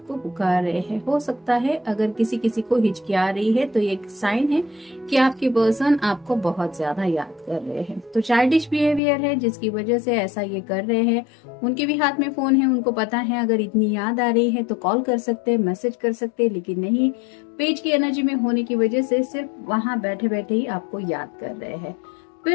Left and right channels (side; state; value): right; drops out; at 9.0 s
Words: पुकार रहे हैं। हो सकता है अगर किसी किसी को हिचकिया रही है तो ये एक साइन है कि आपके पर्सन आपको बहुत ज्यादा याद कर रहे हैं। तो चाइल्डिश बिहेवियर है जिसकी वजह से ऐसा ये कर रहे हैं। उनके भी हाथ में फोन है, उनको पता है अगर इतनी याद आ रही है तो कॉल कर सकते हैं, मैसेज कर सकते हैं, लेकिन नहीं, पेज की एनर्जी में होने की वजह से सिर्फ वहां बैठे बैठे ही आपको याद कर रहे हैं।